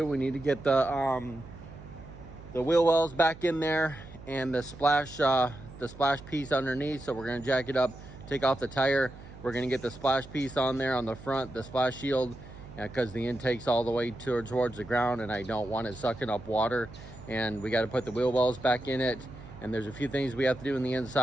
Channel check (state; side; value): noise; right; hum, 17 dB below the sound